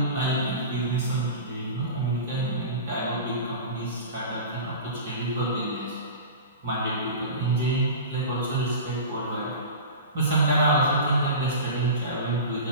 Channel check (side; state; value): both; inverted; correlation -0.32